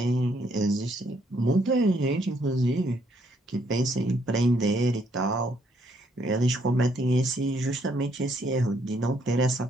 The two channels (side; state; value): both; normal; correlation 0.70